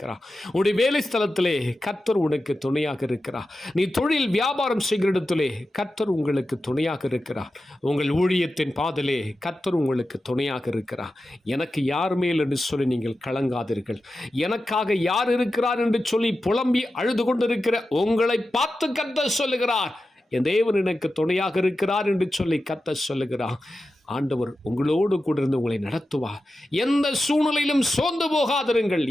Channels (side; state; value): both; normal; correlation 0.92